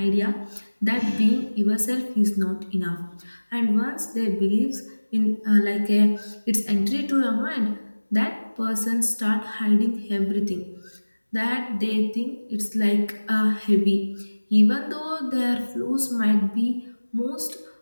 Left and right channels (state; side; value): inverted; both; correlation -1.00